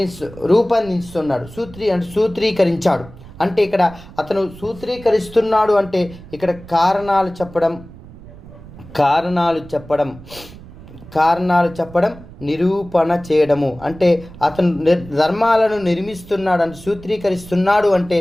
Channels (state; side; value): noise; right; rumble, 18 dB below the sound